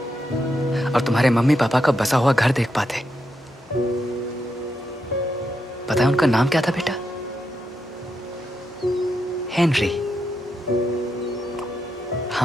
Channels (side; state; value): both; normal; correlation 0.83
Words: और तुम्हारे मम्मी पापा का बसा हुआ घर देख पाते। पता है उनका नाम क्या था बेटा? हेनरी।